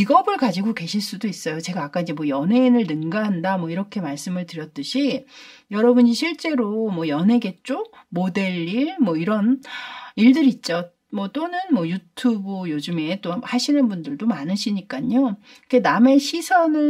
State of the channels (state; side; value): identical; both; correlation 1.00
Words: 가지고 계실 수도 있어요. 제가 아까 이제 뭐 연예인을 능가한다 뭐 이렇게 말씀을 드렸듯이 여러분이 실제로 뭐 연예계 쪽 모델 일 뭐 이런 일들 있죠. 뭐 또는 뭐 유튜브 요즘에 또 하시는 분들도 많으시니까요. 남의